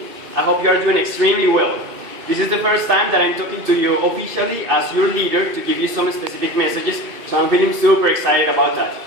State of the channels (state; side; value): late; left; 2.6 ms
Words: I hope you are doing extremely well. This is the first time that I'm talking to you officially as your leader to give you some specific messages, so I'm feeling super excited about that.